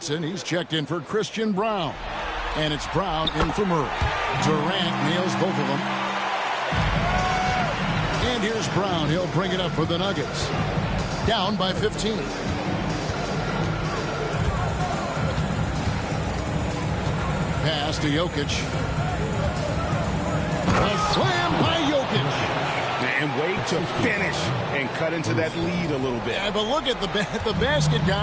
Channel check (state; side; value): identical; both; correlation 1.00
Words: he's checked in for Christian Brown. And it's Brown in for Murray. Durant nails both of them. And here's Brown. He'll bring it up for the Nuggets. Down by 15. Pass to Jokic. A slam by Jokic. And wait to finish and cut into that lead a little bit. Yeah, but look at the basket